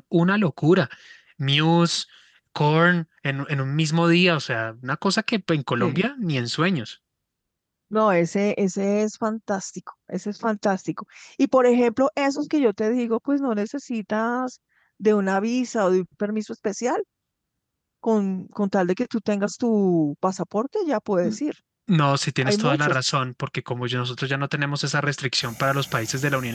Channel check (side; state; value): both; identical; correlation 1.00